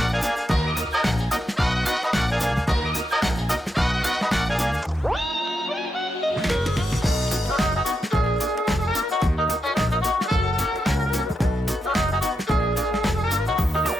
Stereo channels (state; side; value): normal; both; correlation 0.85